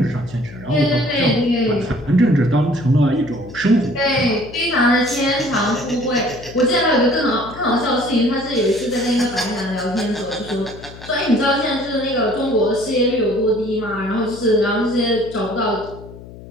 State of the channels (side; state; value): left; noise; hum, 16 dB below the sound